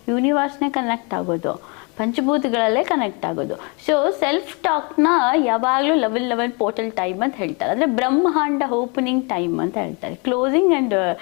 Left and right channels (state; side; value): quieter; right; 32.4 dB